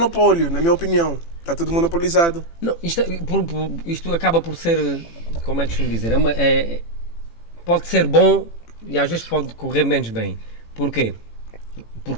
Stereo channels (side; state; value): right; late; 18 ms